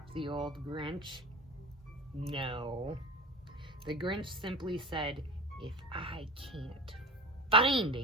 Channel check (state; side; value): normal; both; correlation 0.31